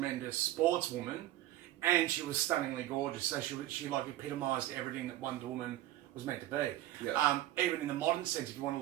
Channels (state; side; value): quieter; left; 14.6 dB